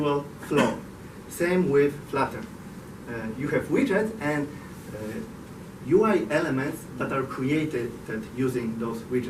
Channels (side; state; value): both; identical; correlation 1.00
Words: floor. Same with Flutter. You have widgets and UI elements that are created using those